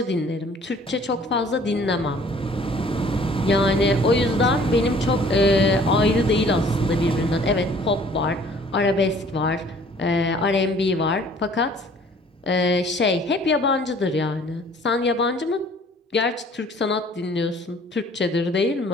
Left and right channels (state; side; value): normal; both; correlation 0.54